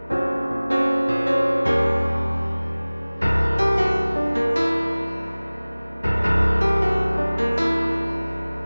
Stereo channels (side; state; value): both; inverted; correlation -0.99